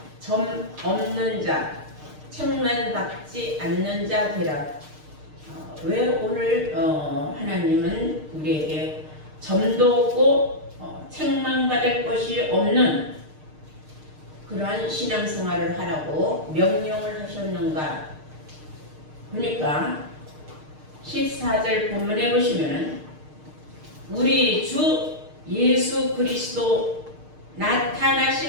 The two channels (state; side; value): late; left; 6.5 ms